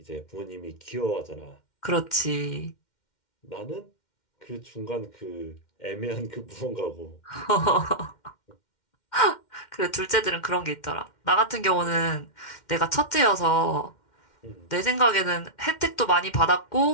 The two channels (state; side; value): late; right; 2.1 ms